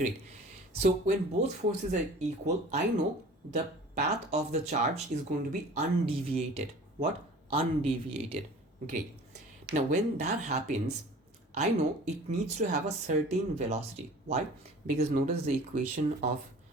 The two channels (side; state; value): both; normal; correlation 0.44